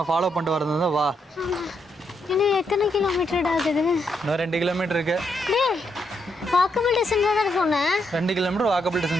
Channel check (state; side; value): normal; both; correlation 0.78